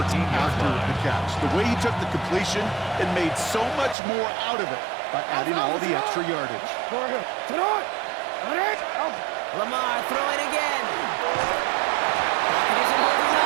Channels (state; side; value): drops out; left; at 4.0 s